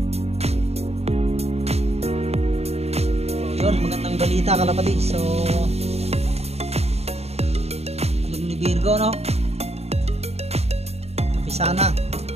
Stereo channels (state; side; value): late; left; 0.30 ms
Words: So yun, magandang balita kalapatids. So alam ni Virgo, no? Kapisa na.